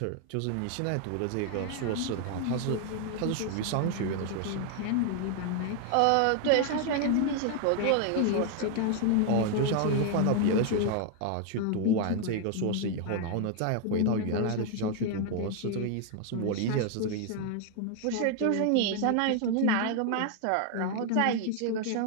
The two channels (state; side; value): different; both; correlation 0.00